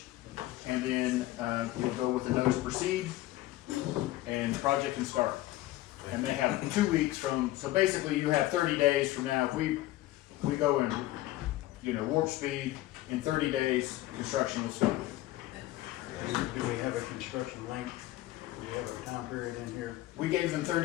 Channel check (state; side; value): quieter; right; 16.3 dB